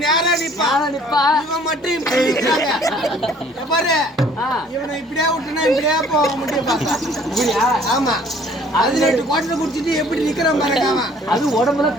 நேரா நிப்பா. இவன் மட்டும் இப்படி நிக்கிறாங்க. பாரு இவனை இப்படியே விட்டுனா இப்படியே போக முடியும் பார்த்தா. ஆமா அது 2 குவாட்டர் குடிச்சிட்டு எப்படி நிக்கிறான் பாருங்க அவன். அது உடம்புல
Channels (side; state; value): both; normal; correlation 0.56